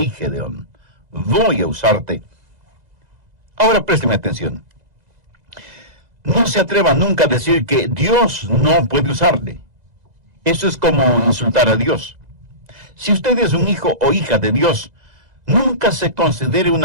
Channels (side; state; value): left; late; 2.0 ms